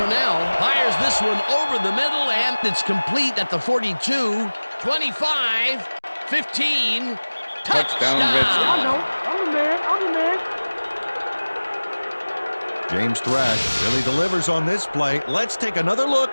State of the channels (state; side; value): inverted; both; correlation -1.00